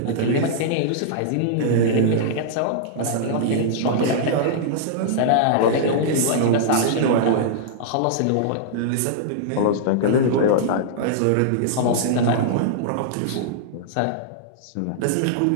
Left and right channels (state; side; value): different; both; correlation -0.02